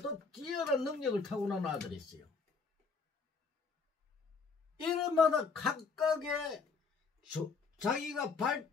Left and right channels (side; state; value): right; quieter; 4.9 dB